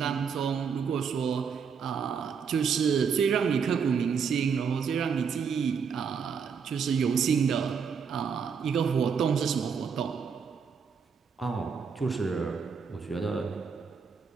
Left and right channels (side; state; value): left; quieter; 6.3 dB